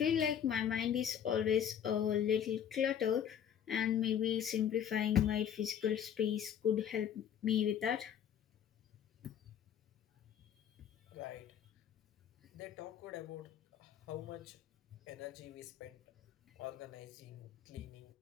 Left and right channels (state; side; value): quieter; right; 9.0 dB